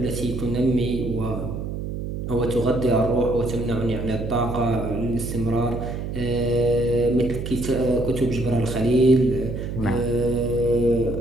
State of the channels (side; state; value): right; noise; hum, 5 dB below the sound